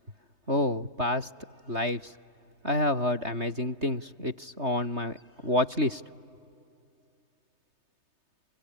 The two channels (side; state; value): left; late; 3.2 ms